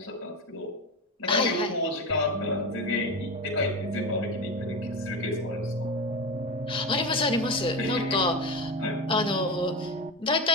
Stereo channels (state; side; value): normal; both; correlation 0.21